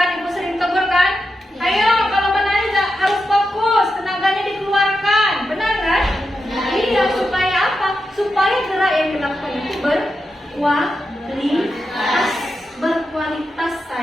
ibu sering tegur kan, ayo kalau menari harus fokus, tenaganya dikeluarkan, benar kan? Iya, supaya apa? Supaya gerak yang dilakukan itu berkualitas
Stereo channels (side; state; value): both; normal; correlation 0.88